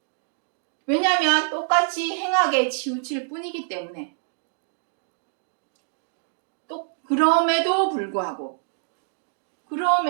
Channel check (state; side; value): silent; left; 58 dB below the other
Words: 왜냐하면 똑같이 행악에 치우칠 뿐이기 때문에. 또 그럼에도 불구하고